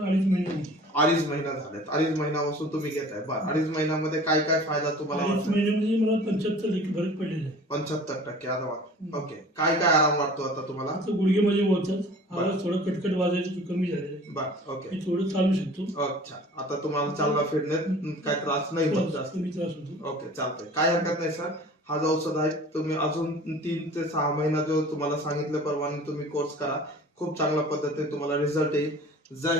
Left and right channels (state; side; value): normal; both; correlation 0.44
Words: महिने. 2.5 महिना झालेत. 2.5 महिन्यापासून तुम्ही घेताय. 2.5 महिन्यामध्ये काय काय फायदा तुम्हाला? 2.5 महिन्यामध्ये मला 75% फरक पडलेला आहे. 75% आराम. ओके. काय काय आराम वाटतो आता तुम्हाला? गुडघे माझे वळतात, आवाज थोडं कटकट वाजायचं कमी झालेलं आहे. ओके. मी थोडं चालू शकतो. अच्छा, आता तुम्हाला चालना फिरण्यात काय त्रास नाही होत जास्त? कमी त्रास होतो. ओके, चालतंय. काय हरकत नाही सर. हा जो औषध आहे तुम्ही अजून 3 ते 6 महिना जो तुम्हाला सांगितल्याप्रमाणे तुम्ही कोर्स करा. खूप चांगल्या पद्धतीने तुम्हाला रिझल्ट येईल. जय